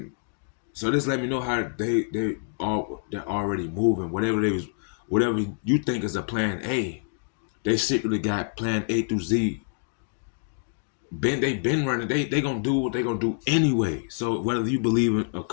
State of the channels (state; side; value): silent; right; digital silence